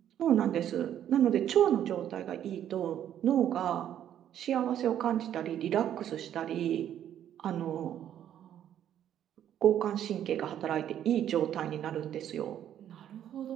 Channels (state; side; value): quieter; left; 10.5 dB